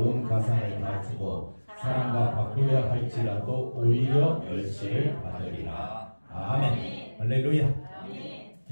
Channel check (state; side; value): inverted; both; correlation -1.00